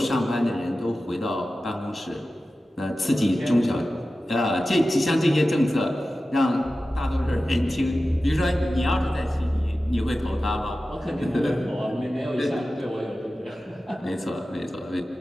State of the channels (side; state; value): both; normal; correlation 0.94